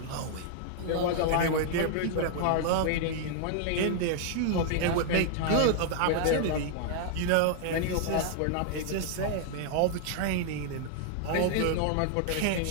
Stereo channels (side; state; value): both; different; correlation 0.00